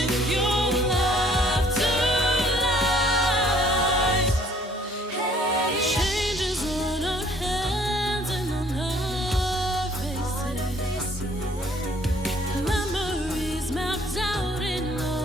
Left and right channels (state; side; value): normal; both; correlation 0.60